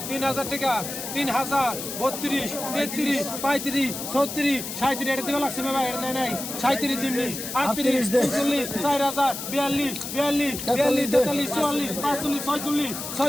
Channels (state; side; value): noise; left; hiss, 7 dB below the sound